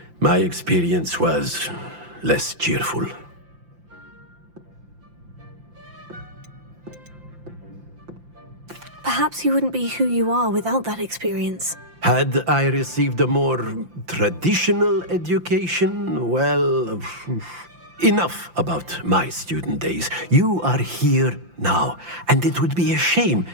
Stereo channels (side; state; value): left; late; 5.8 ms